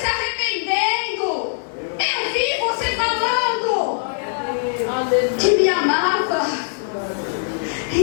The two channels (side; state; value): right; silent; digital silence